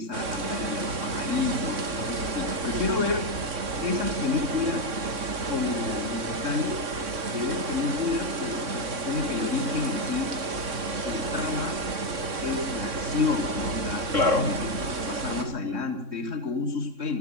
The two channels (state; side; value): late; left; 3.6 ms